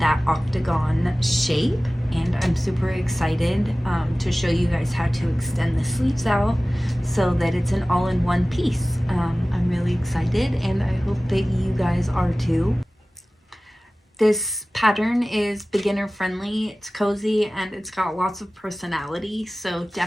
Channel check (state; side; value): normal; both; correlation 0.97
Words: octagon shape, and I'm super excited to show you guys how to extend the sleeves out so that it's an all-in-one piece. I'm really excited, and I hope that you guys are too. This pattern is beginner friendly, it's cozy, and it's got lots of personality, so